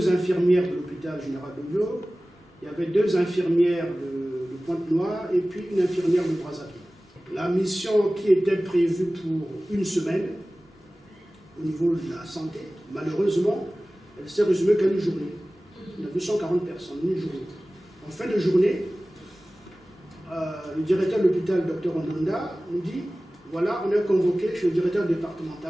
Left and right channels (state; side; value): normal; both; correlation 0.97